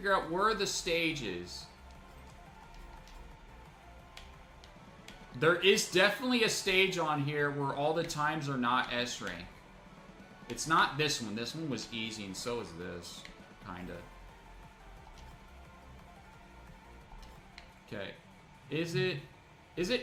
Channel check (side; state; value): both; identical; correlation 1.00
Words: out where the stage is. There is definitely a stage on here where all the times are not S rank. It's not this one. This one was easy, and so is this. Kinda. Okay. Is it